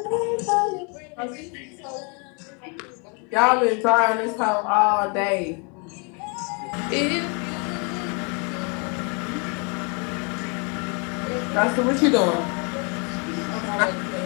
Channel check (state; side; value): quieter; right; 35.2 dB